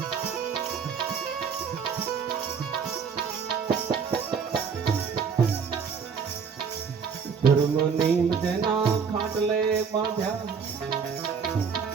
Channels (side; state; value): left; quieter; 6.3 dB